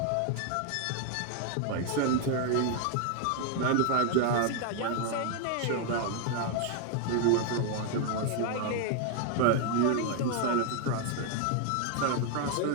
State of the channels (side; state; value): both; different; correlation 0.00